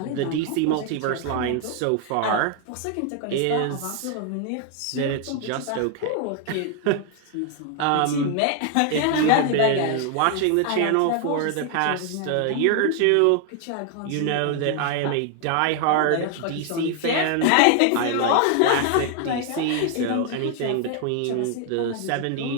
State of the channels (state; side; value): different; both; correlation 0.00